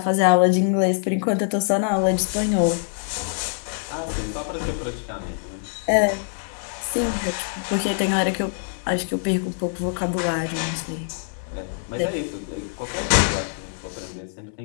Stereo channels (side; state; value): right; silent; digital silence